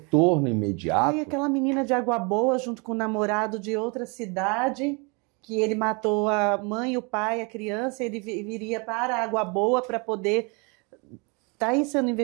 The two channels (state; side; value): quieter; left; 31.4 dB